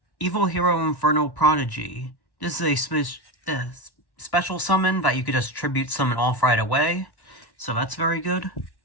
Evil Hero Infernal Prodigy. This is a special summon that you could just tribute summon off right away, so that's very good.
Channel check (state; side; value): late; right; 1.1 ms